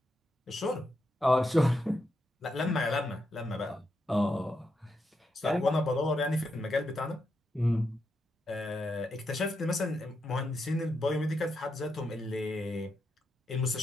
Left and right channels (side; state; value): both; normal; correlation 0.83